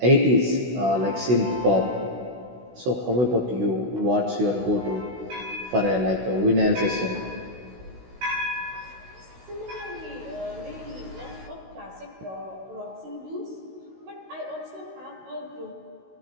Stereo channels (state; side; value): late; left; 16 ms